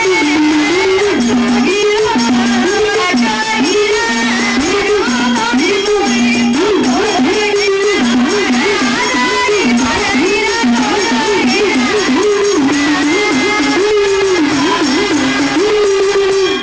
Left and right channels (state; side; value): identical; both; correlation 1.00